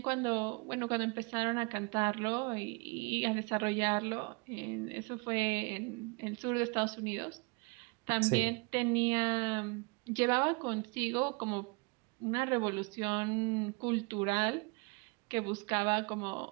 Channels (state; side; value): quieter; left; 30.5 dB